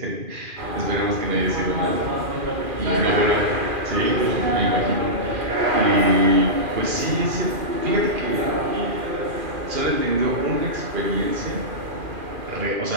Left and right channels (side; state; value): left; late; 2.4 ms